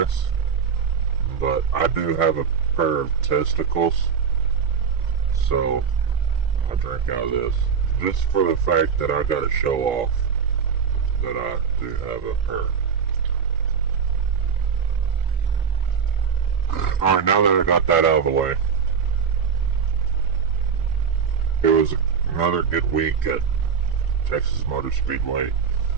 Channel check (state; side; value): quieter; left; 6.7 dB